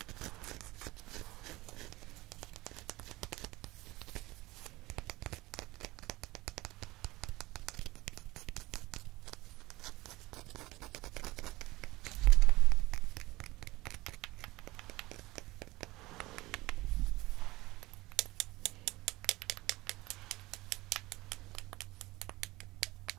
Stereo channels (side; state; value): left; quieter; 19.7 dB